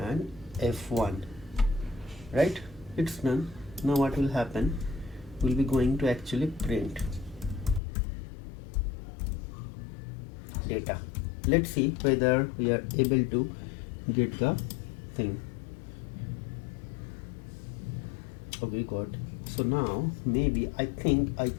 f1, right? It's done. Now what will happen? We'll be going to actually print data. Let's see whether we are able to get the thing. Okay, good. So now maybe I think I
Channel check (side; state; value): right; drops out; at 7.8 s